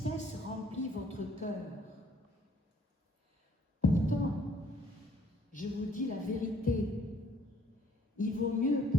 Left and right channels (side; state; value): both; normal; correlation 0.62